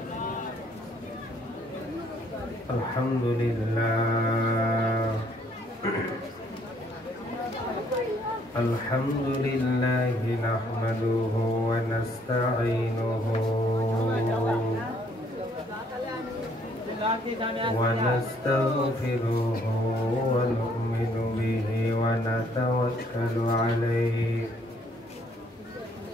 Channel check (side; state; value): both; normal; correlation 0.65